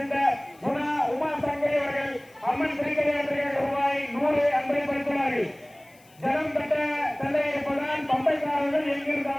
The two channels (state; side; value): noise; left; hiss, 29 dB below the sound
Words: அம்மன் திருக்கல்யாணத்திற்காக ரூபாய் 100 அன்பளிப்படுத்தினார்கள். ஜனம் பெற்ற தந்தை இருப்பதால் பம்பைக்காரர்கள்